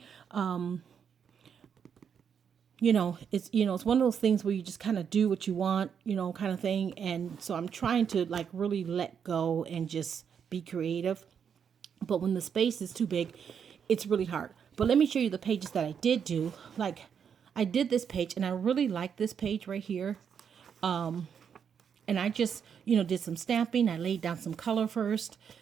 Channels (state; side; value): quieter; left; 7.4 dB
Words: It's one of those things where you just kind of do what you want, kind of thing. And so I'm trying to like really let go and just be creative. But when the space is too big, it's really hard. But let me show you the pages that I did do. Like, I did this page, and I really like this page right here. And I just, did some stamping. I laid down some color first.